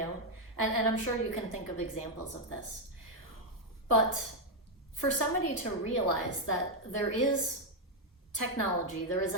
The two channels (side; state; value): both; normal; correlation 0.01